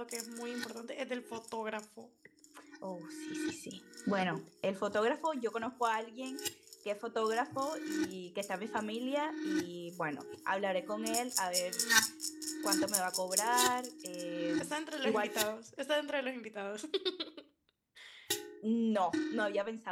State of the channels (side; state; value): both; identical; correlation 1.00